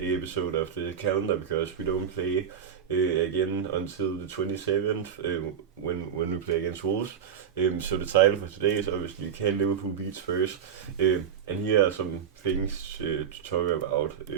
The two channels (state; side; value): quieter; left; 8.0 dB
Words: episode of the calendar because we don't play again until the 27th when we play against Wolves. So the title for today is obviously Can Liverpool beat Spurs? And here are some things to talk about